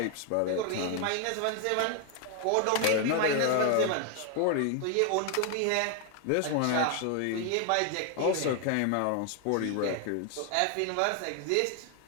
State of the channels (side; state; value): both; different; correlation 0.01